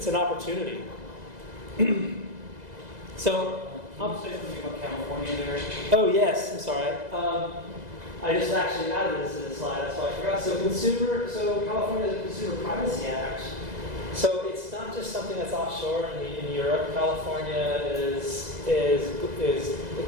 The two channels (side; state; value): left; late; 2.0 ms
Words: an opportunity. So, Can you say something about California there? Oh yes, I'm sorry. I just actually added this to the slide, that's why I forgot. So California has a Consumer Privacy Act. So it's it's not just something that's offshore in Europe. California is